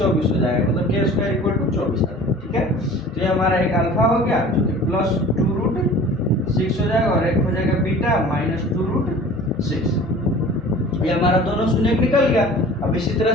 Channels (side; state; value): both; normal; correlation 0.44